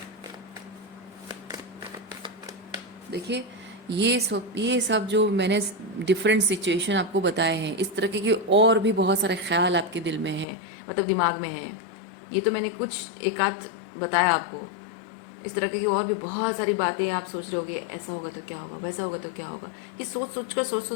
देखिए, ये सब जो मैंने डिफरेंट सिचुएशन आपको बताए हैं, इस तरह के और भी बहुत सारे ख्याल आपके दिल में हैं, मतलब दिमाग में हैं। ये तो मैंने कुछ एक आध बताया आपको। इस तरह की और भी बहुत सारी बातें आप सोच रहे होगे, ऐसा होगा तो क्या होगा, वैसा होगा तो क्या होगा। ये सोच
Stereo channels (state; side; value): drops out; right; at 10.5 s